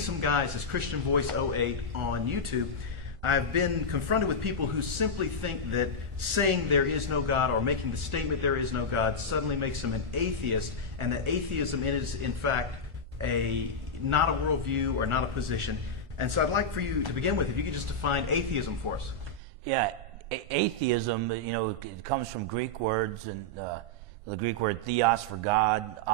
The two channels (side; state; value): left; late; 1.4 ms